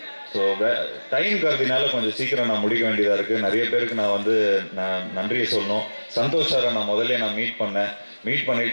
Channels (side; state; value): both; inverted; correlation -1.00